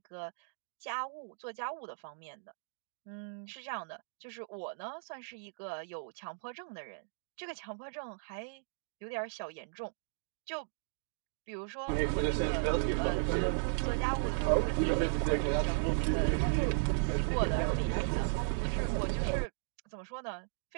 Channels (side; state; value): left; silent; digital silence